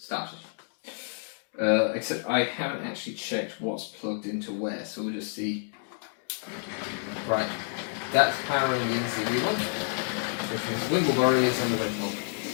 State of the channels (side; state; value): right; silent; 58 dB below the other